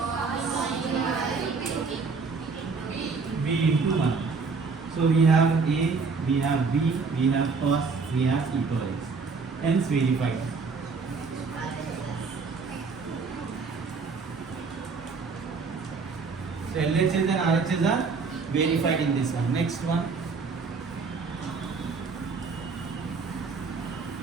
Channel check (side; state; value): left; quieter; 4.7 dB